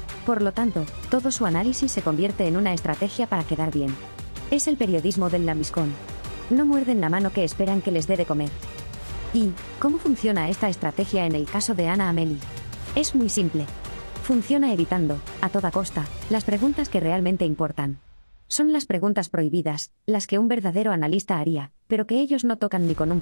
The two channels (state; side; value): inverted; both; correlation -1.00